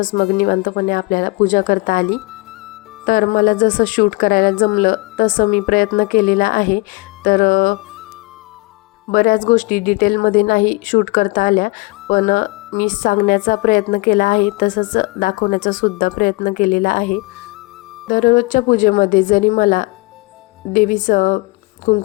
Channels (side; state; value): right; quieter; 25.1 dB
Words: मग निवांतपणे आपल्याला पूजा करता आली। तर मला जसं शूट करायला जमलं तसं मी प्रयत्न केलेला आहे। तर बऱ्याच गोष्टी डिटेलमध्ये नाही शूट करता आल्या, पण मी सांगण्याचा प्रयत्न केला आहे, तसंच दाखवण्याचा सुद्धा प्रयत्न केलेला आहे। दररोजच्या पूजेमध्ये जरी मला देवीचं